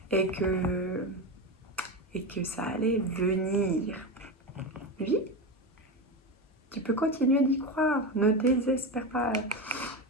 et que ça allait venir. Oui, tu peux continuer d'y croire, ne désespère pas.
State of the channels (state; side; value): normal; both; correlation 0.18